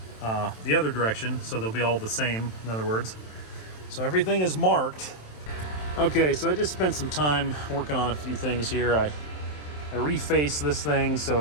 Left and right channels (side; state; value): right; late; 27 ms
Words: the other direction, so they'll be all the same, in other words. So everything is marked. Okay, so I just spent some time working on a few things here. I refaced this thing so